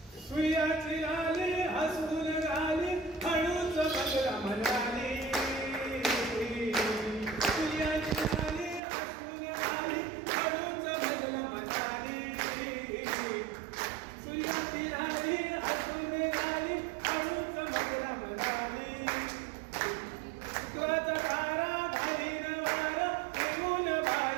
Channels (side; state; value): left; drops out; at 8.8 s